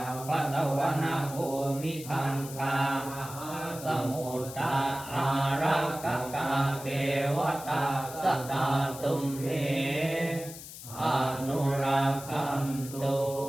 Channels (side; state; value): left; noise; hiss, 13 dB below the sound